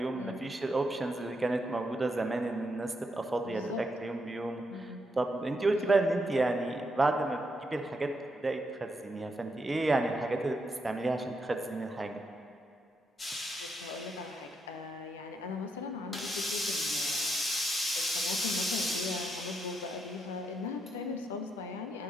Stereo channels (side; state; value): both; normal; correlation 0.80